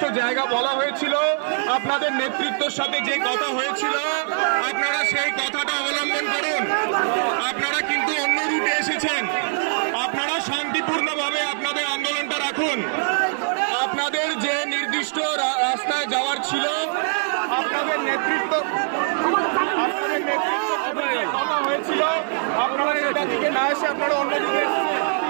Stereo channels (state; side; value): silent; left; digital silence